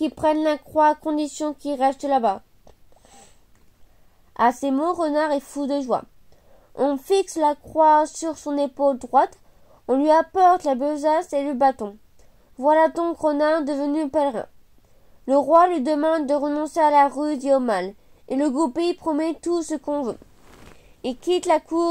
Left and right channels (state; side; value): identical; both; correlation 1.00